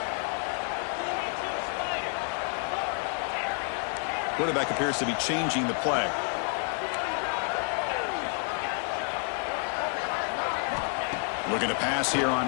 Quarterback appears to be changing the play. Looking to pass here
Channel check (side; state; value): right; quieter; 39.8 dB